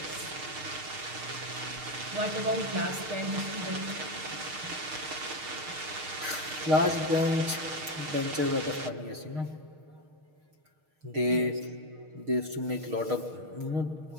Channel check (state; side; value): late; left; 6.5 ms